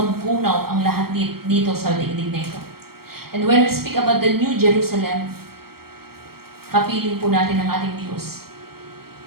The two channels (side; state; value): left; late; 0.94 ms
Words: ang lahat dito sa daigdig na ito. And when we speak about the new Jerusalem, kapiling po natin ang ating Diyos.